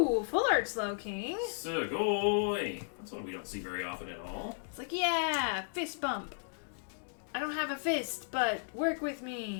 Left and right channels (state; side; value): silent; right; digital silence